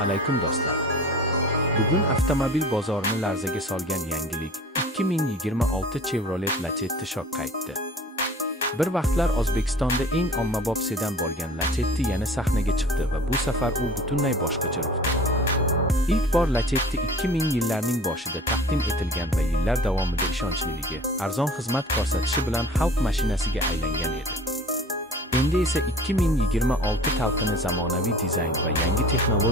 alaykum do'stlar. Bugun avtomobil bozorini larzaga solgan yangilik 2026 Chevrolet Lacetti shok qaytdi. Bir vaqtlar O'zbekistonda eng ommabop sedan bo'lgan Lacetti yana sahnaga chiqdi va bu safar u butunlay boshqacha ruhda. İlk bor Lacetti 2000 yillarning boshida taqdim etilgan va yillar davomida ishonchliligi, arzon xizmat ko'rsatishi bilan xalq mashinasiga aylangan edi. Endi esa 2026 talqini zamonaviy dizayn va yangi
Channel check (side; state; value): both; normal; correlation 0.44